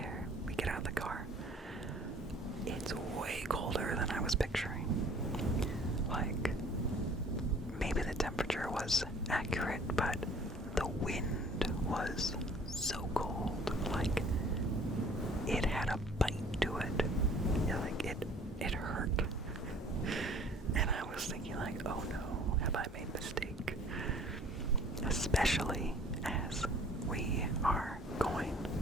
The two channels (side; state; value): both; normal; correlation 0.52